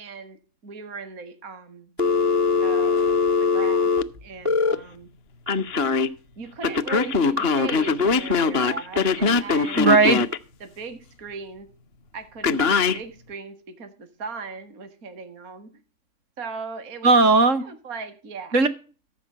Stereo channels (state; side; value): late; left; 3.6 ms